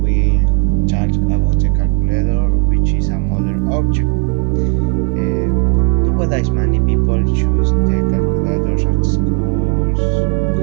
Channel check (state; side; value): quieter; left; 37.5 dB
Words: talk about the calculator, which is a modern object. Nowadays, many people choose the calculators at schools,